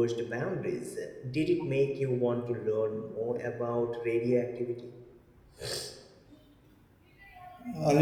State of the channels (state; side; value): identical; both; correlation 1.00